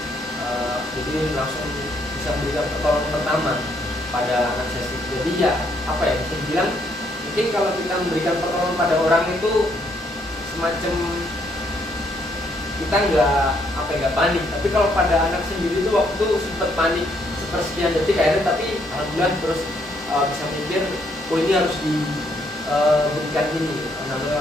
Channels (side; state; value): both; normal; correlation 0.71